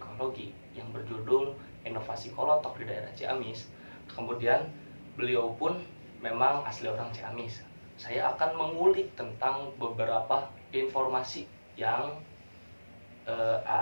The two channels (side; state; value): both; inverted; correlation -1.00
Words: yang berjudul Inovasi Kolotok di Daerah Ciamis. Kemudian beliau pun memang asli orang Ciamis. Saya akan mengulik tentang beberapa informasi yang